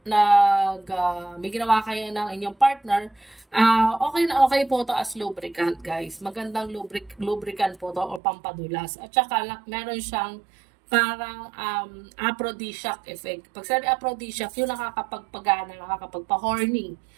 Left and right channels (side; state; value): left; drops out; at 8.2 s